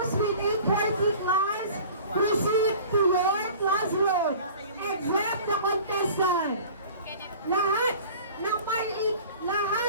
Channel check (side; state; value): both; inverted; correlation -0.44